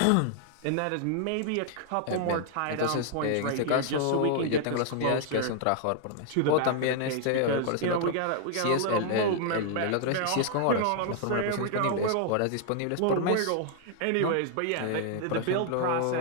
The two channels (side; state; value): both; different; correlation -0.01